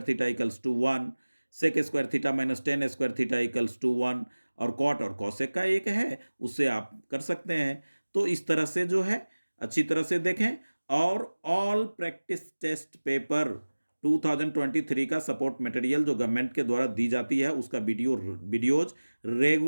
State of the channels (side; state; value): both; inverted; correlation -1.00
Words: theta equals to 1, sec square theta minus tan square theta equals to 1 और कॉट और कॉसेक का एक है, उससे आप कर सकते हैं। तो इस तरह से जो है अच्छी तरह से देखें और ऑल प्रैक्टिस टेस्ट पेपर 2023 का सपोर्ट मटेरियल जो गवर्नमेंट के द्वारा दी जाती है उसका वीडियोज